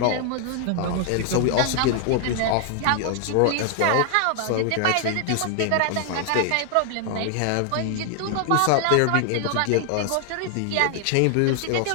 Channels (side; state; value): both; different; correlation 0.00